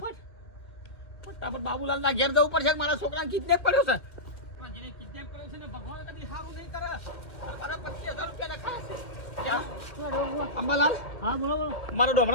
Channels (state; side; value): late; right; 2.3 ms